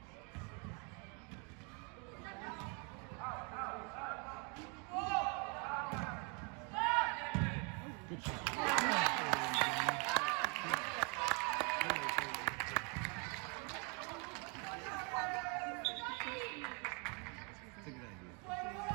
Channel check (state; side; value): quieter; left; 34.8 dB